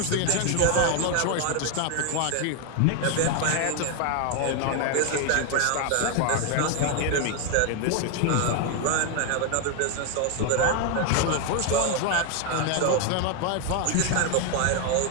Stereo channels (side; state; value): both; different; correlation 0.01